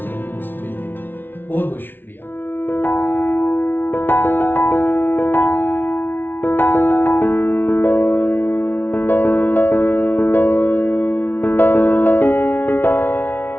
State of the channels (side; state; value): right; late; 0.099 ms